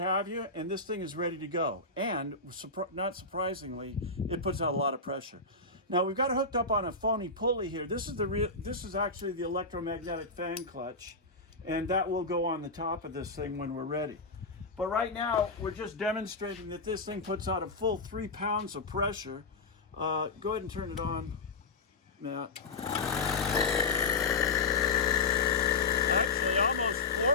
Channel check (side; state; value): right; quieter; 3.7 dB